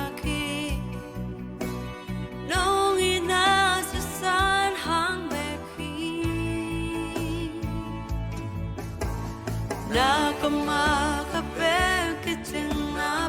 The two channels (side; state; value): both; identical; correlation 1.00